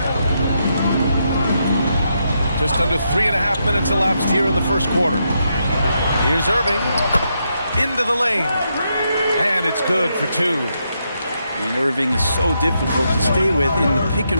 Just under 3.5 minutes elapsed here in the first quarter. Here's Irving. Into the lane. And it's good for 2. And Irving is so difficult to stay with in the pick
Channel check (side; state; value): both; inverted; correlation -0.81